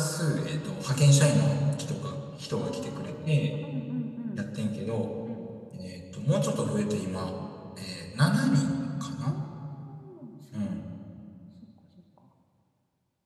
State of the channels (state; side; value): identical; both; correlation 1.00